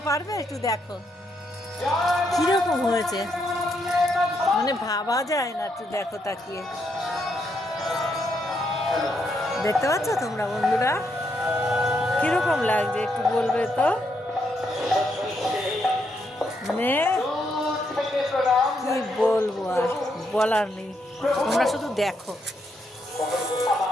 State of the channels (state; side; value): normal; both; correlation 0.78